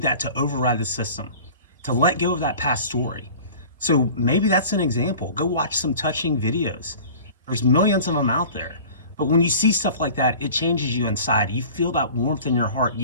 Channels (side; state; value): both; inverted; correlation -0.42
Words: that to override the system, to let go of that past story. So maybe that's an example. Go watch some touching videos. There's millions of them out there. But when you see stuff like that, it changes you inside. You feel that warmth in your heart.